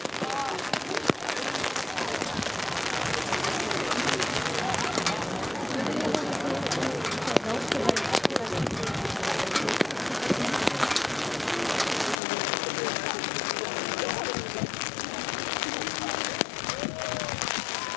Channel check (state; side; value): drops out; right; at 12.2 s